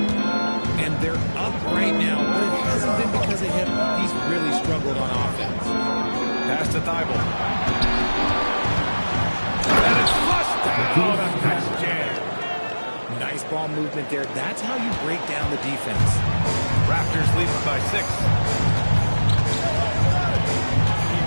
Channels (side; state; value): both; inverted; correlation -1.00